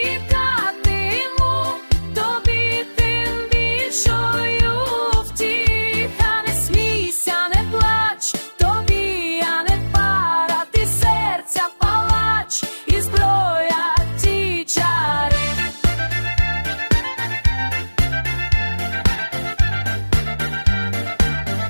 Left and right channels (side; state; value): both; inverted; correlation -1.00